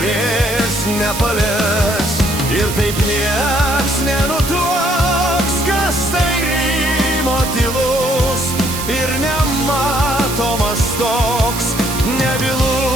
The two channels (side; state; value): right; noise; hiss, 7 dB below the sound